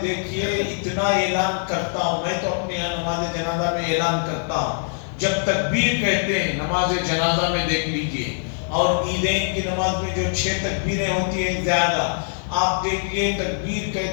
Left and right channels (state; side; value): silent; right; digital silence